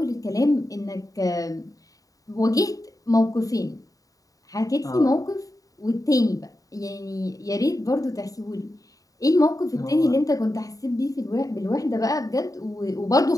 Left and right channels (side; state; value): right; late; 0.17 ms